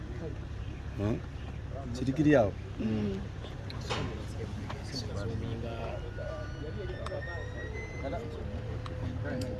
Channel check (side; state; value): both; identical; correlation 1.00